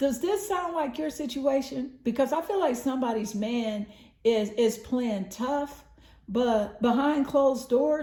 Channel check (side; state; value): both; identical; correlation 1.00